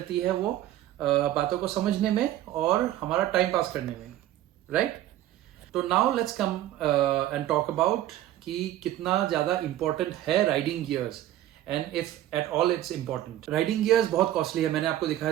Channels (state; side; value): quieter; left; 13.5 dB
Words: है वो बातों को समझने में और हमारा टाइम पास करने में, राइट। तो now let's come and talk about कि कितना ज्यादा इंपॉर्टेंट है riding gears and if at all it's important. Riding gears बहुत कॉस्टली है, मैंने आपको